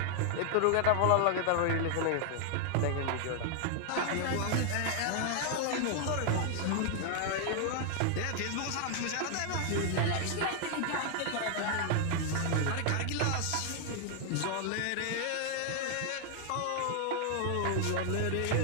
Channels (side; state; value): both; different; correlation 0.00